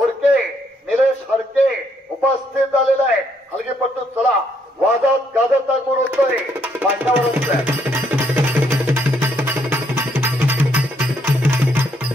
निलेश हडके उपस्थित झालेला आहे. हलगीपट्टू चला वादात गाजत आगमन होतोय मांडावरच.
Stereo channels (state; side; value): normal; both; correlation 0.72